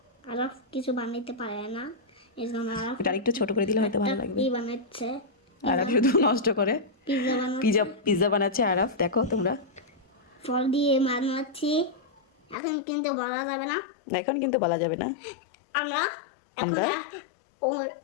আরাফ কিছু বানাইতে পারে না, এই জন্য আরাফ এটা একটু ছোট করে দিলে হয়তো ভালো একটা লাগবে। ই বানাচ্ছে, আরাফ শুধু নষ্ট করে। পিজা বানাচ্ছে, পিজা পিজা বানাচ্ছে আরাফ, দেখো তোমরা। ফল দিয়ে বানাচ্ছি, এখন কিন্তু বলা যাবে না। এখন কিন্তু বলা যাবে না। আমরা এখন আমরা? ও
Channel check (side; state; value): right; drops out; at 12.6 s